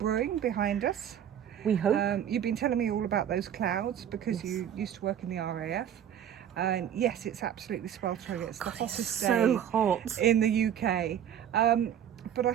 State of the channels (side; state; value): left; quieter; 9.7 dB